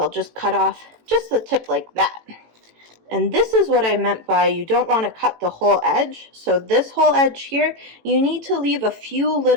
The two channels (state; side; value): late; left; 18 ms